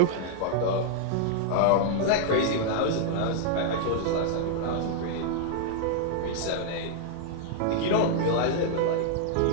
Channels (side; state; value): both; different; correlation -0.01